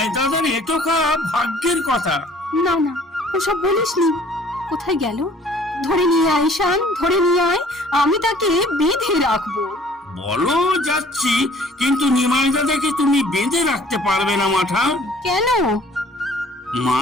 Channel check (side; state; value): both; normal; correlation 0.54